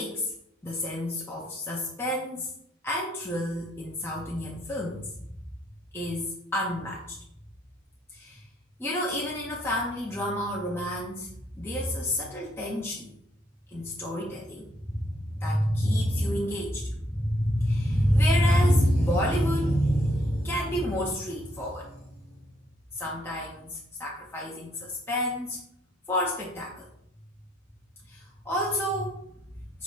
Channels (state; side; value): normal; both; correlation 0.70